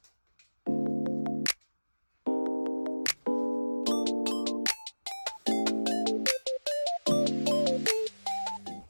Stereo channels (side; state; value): both; inverted; correlation -1.00